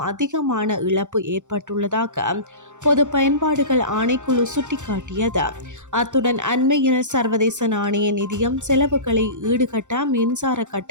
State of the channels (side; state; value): left; late; 0.85 ms